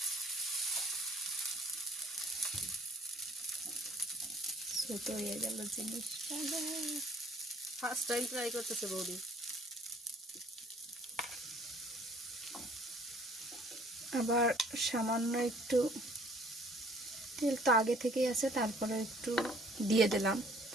ছোট হয়ে গেল জিনিসটা। ফার্স্ট টাইম ট্রাই করতেছে বৌদি। আবার সামান্য একটু তেল তো আগে থেকেই আছে, তারপরে একটু দিয়ে দিলাম।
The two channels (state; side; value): normal; both; correlation 0.57